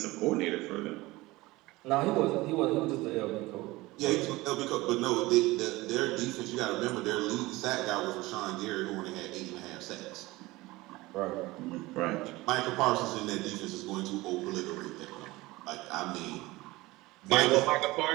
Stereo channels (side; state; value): left; quieter; 20.3 dB